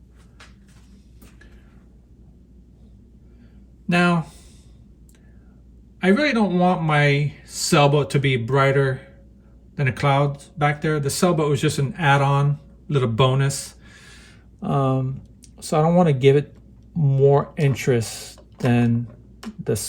Now, I really don't want my sailboat to be brighter than the clouds back there. The sailboat was just an add-on, little bonus. So I don't want to give it more interest than the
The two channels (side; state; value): both; identical; correlation 1.00